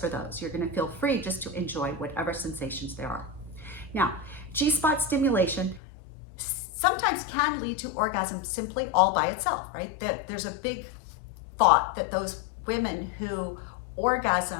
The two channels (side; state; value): right; drops out; at 5.8 s